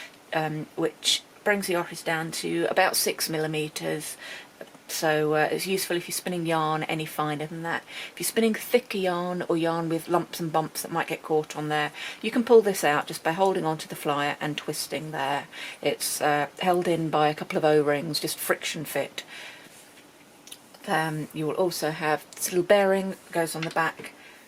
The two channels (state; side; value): identical; both; correlation 1.00